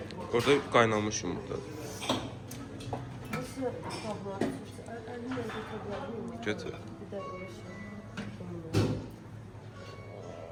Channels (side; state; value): both; identical; correlation 1.00